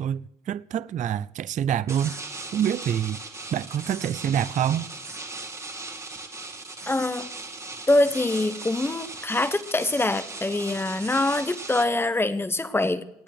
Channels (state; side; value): normal; both; correlation 0.67